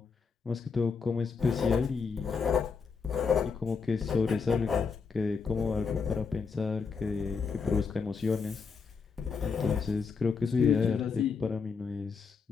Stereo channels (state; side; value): quieter; right; 5.3 dB